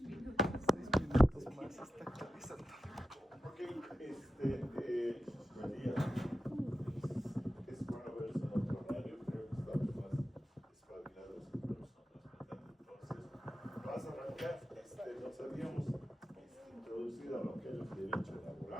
minutos. 6 minutos más está actualizando. Ok, María, es bueno verse en otro horario, creo que estamos más espabilados que personas, ¿verdad? Entonces, vas a arrancar, nos habíamos introducido a lo que es el derecho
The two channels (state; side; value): normal; both; correlation 0.90